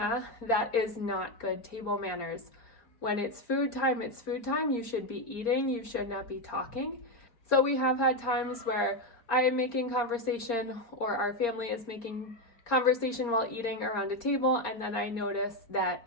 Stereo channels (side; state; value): right; late; 4.3 ms